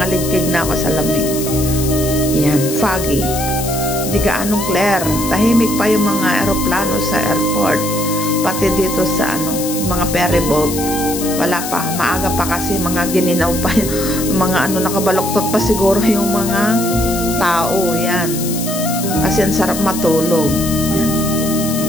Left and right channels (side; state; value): left; noise; hiss, 7 dB below the sound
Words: ligkig na ako sa lamig. Yan, foggy. Hindi gaanong clear. Tahimik pa yung mga eroplano sa airport. Pati dito sa mga ferry boat. Wala pa, maaga pa kasi mga gininaw pa yung mga nakabaluktot pa siguro yung mga tao. Yan. Kasi ang sarap matulog.